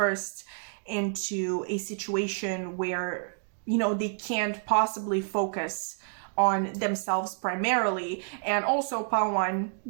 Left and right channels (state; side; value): silent; left; digital silence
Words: into a situation where they can't possibly focus on themselves primarily. And also, Pawan,